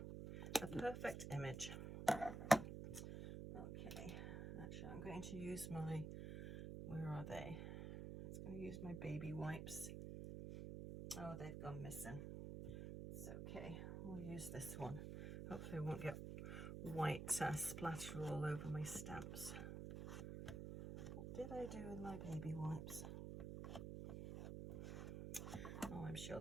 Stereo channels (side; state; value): right; noise; hum, 5 dB below the sound